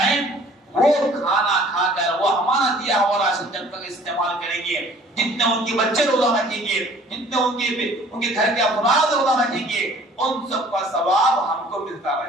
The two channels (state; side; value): normal; both; correlation 0.53